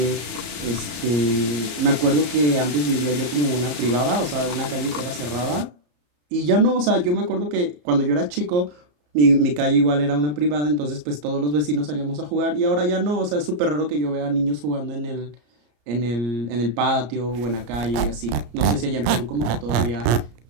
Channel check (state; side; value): late; left; 34 ms